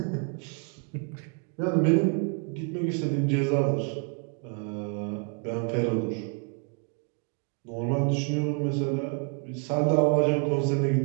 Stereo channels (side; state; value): left; quieter; 36.7 dB